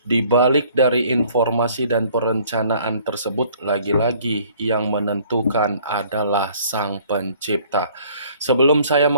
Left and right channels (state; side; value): inverted; both; correlation -0.57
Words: di balik dari informasi dan perencanaan tersebut, lagi-lagi yang menentukan adalah Sang Pencipta. Sebelum saya